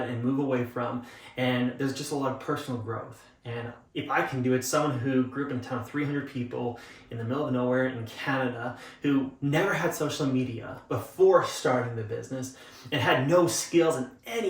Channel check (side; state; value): both; identical; correlation 1.00